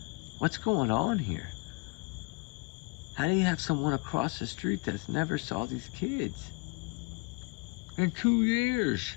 What's going on here? How do you have someone across the street that's never saw these kids in 2 years?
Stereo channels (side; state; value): right; quieter; 28.5 dB